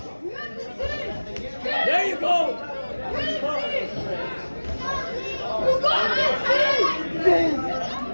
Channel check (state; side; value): inverted; both; correlation -1.00